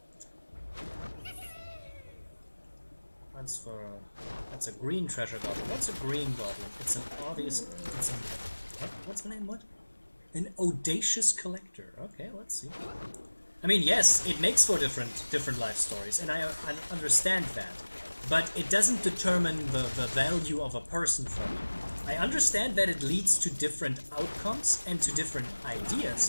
That's a green treasure goblin. What's a green goblin? It's an obvious. It's an what's the name? What? An audacious collector. Okay, let's see. I mean, yes, it makes for different life stories, and I understand that, but it doesn't determine the value of a person for me. I understand that it leads to different outcomes and to different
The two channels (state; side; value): inverted; both; correlation -1.00